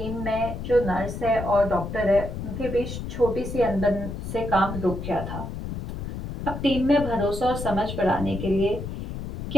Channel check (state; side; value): noise; left; rumble, 6 dB below the sound